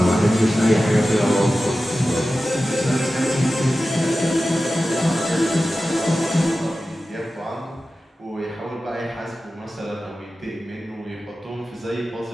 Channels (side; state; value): both; normal; correlation 0.94